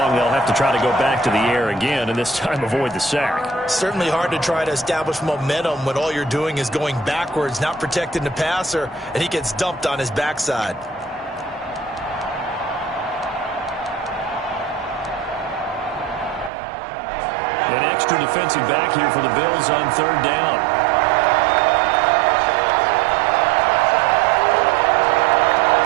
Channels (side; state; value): left; drops out; at 16.5 s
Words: They'll have to try to go back to the air again, and this time avoid the sack. Certainly hard to try to establish momentum when all you're doing is going backwards, not protecting the passer, and he gets dumped on his backside. An extra defensive back here for the Bills on 3rd down.